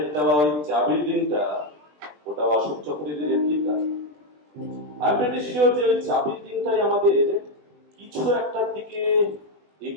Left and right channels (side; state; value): left; late; 20 ms